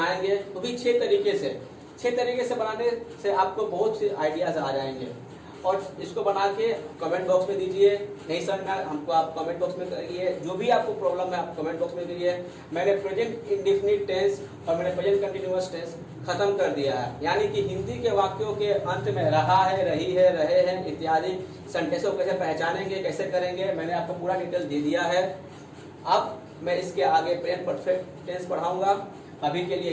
वो भी 6 तरीके से। 6 तरीके से बनाने से आपको बहुत से आइडियाज आ जाएंगे और इसको बना के कमेंट बॉक्स में दीजिए। नहीं सर मैं हमको आप कमेंट बॉक्स में करिए, जो भी आपको प्रॉब्लम है आप कमेंट बॉक्स में करिए। मैंने प्रेजेंट इंडेफिनिट टेंस और मैंने प्रेजेंट कंटिन्यूअस टेंस खत्म कर दिया है, यानी कि हिंदी के वाक्यों के अंत में रहा है, रही है, रहे हैं इत्यादि सेंटेंसों को कैसे पहचानेंगे, कैसे करेंगे, मैंने आपको पूरा डिटेल दे दिया है। अब मैं इसके आगे प्रेजेंट परफेक्ट टेंस पढ़ाऊंगा। अभी के लिए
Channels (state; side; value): identical; both; correlation 1.00